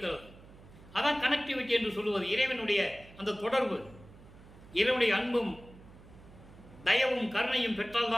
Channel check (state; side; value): noise; right; hum, 21 dB below the sound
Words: அதான் கனெக்டிவிட்டி என்று சொல்லுவது. இறைவனுடைய அந்த தொடர்பு, இறைவனுடைய அன்பும் தயவும் கருணையும்